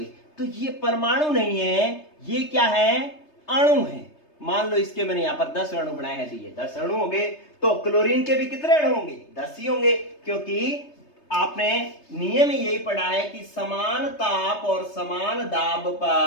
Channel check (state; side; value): late; right; 3.3 ms